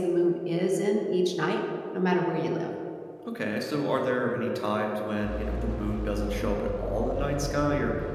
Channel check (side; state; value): both; identical; correlation 1.00